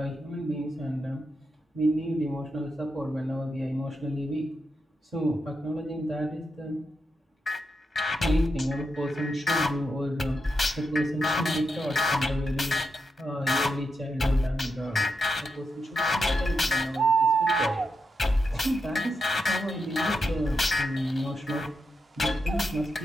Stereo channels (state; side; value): normal; both; correlation 0.85